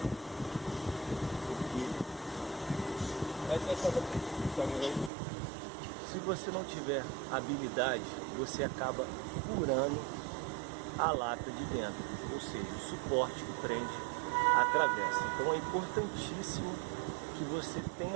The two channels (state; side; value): drops out; left; at 5.1 s